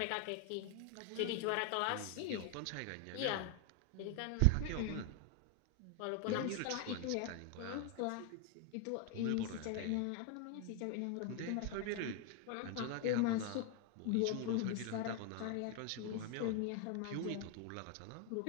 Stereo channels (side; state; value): both; different; correlation 0.01